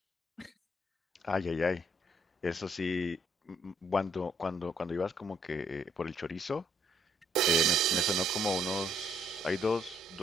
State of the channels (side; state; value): both; normal; correlation 0.68